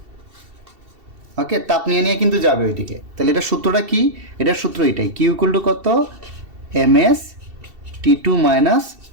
ওকে, তাপ নিয়ে নিয়ে কিন্তু যাবে ওইদিকে। তাহলে এটা সূত্রটা কি, এটার সূত্র এটাই, কিউ ইকুয়াল টু কত, ms T2 মাইনাস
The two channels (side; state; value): left; late; 2.7 ms